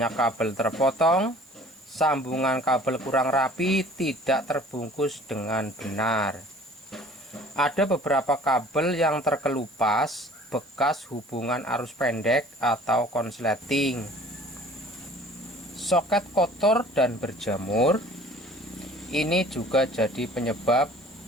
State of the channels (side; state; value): right; noise; hiss, 29 dB below the sound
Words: kabel terpotong, sambungan kabel kurang rapi, tidak terbungkus dengan benar. Ada beberapa kabel yang terkelupas bekas hubungan arus pendek atau konsleting. Soket kotor dan berjamur. Ini juga jadi penyebab